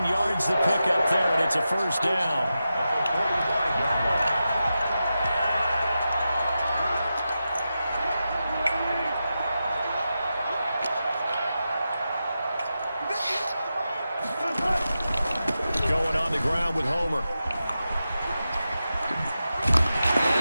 yards the pickup there, and it's a first down. Going on the ground with Homer.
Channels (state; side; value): inverted; both; correlation -0.90